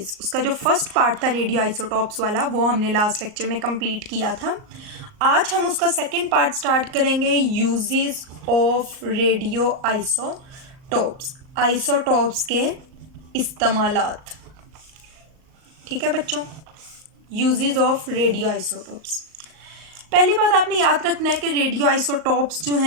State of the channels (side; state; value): left; late; 38 ms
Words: उसका जो फर्स्ट पार्ट था रेडियो आइसोटॉप्स वाला वो हमने लास्ट लेक्चर में कंप्लीट किया था। आज हम उसका सेकेंड पार्ट स्टार्ट करेंगे, uses of radio isotopes, isotopes के इस्तेमालात। ठीक है बच्चों, यूजेस ऑफ रेडियो आइसोटॉप्स। पहली बात आपने याद रखना है कि रेडियो आइसोटॉप्स जो